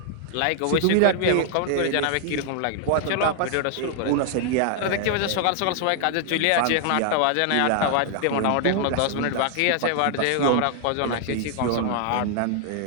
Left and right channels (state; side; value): different; both; correlation 0.00